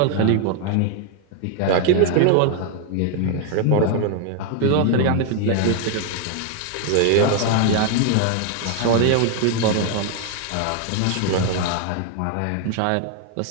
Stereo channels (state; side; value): different; both; correlation 0.00